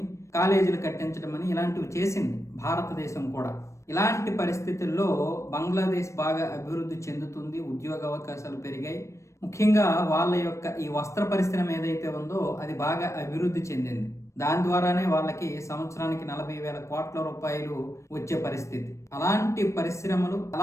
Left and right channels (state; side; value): late; right; 0.14 ms